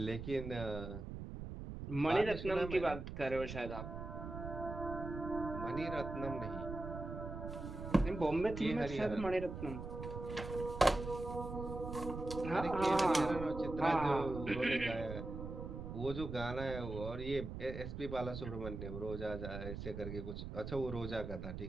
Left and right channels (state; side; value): noise; right; rumble, 7 dB below the sound